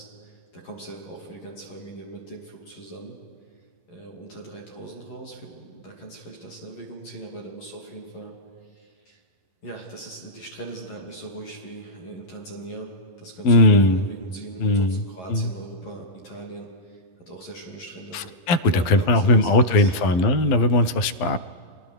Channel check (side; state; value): right; late; 12 ms